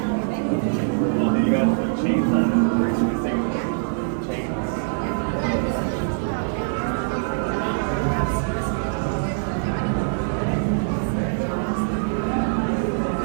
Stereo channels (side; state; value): left; silent; 63 dB below the other